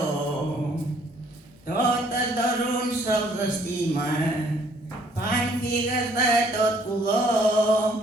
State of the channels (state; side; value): normal; both; correlation 0.62